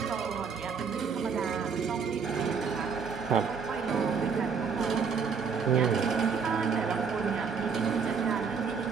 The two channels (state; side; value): quieter; left; 5.9 dB